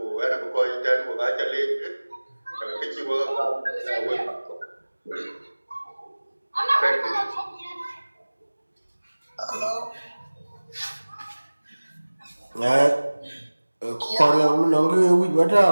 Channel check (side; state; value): both; inverted; correlation -1.00